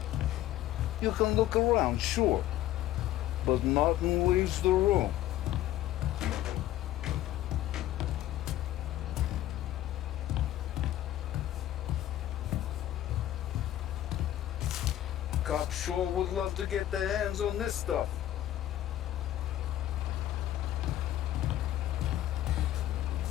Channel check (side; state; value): right; quieter; 13.4 dB